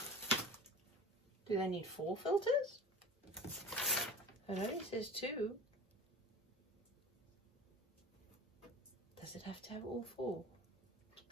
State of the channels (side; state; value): both; normal; correlation 0.38